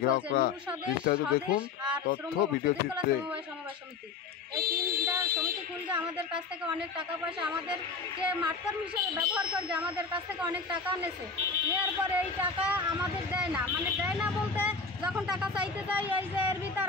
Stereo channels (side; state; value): right; quieter; 4.9 dB